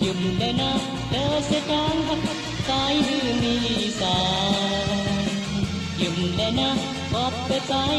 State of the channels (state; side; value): identical; both; correlation 1.00